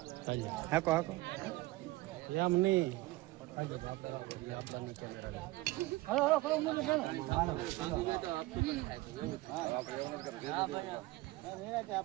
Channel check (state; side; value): quieter; left; 19.5 dB